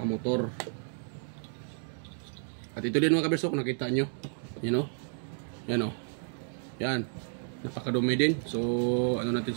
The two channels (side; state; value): left; silent; 57 dB below the other